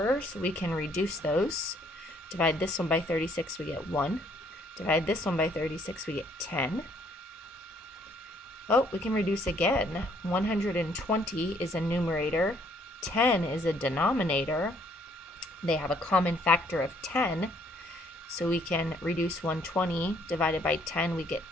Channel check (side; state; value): both; normal; correlation 0.65